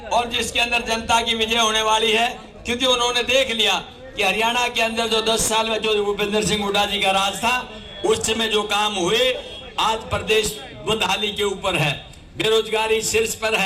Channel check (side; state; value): both; identical; correlation 1.00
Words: और जिसके अंदर जनता की विजय होने वाली है, क्योंकि उन्होंने देख लिया कि हरियाणा के अंदर जो 10 साल में जो भूपेंद्र सिंह हुड्डा जी का राज था उस समय जो काम हुए, आज प्रदेश बदहाली के ऊपर है, बेरोजगारी शीर्ष पर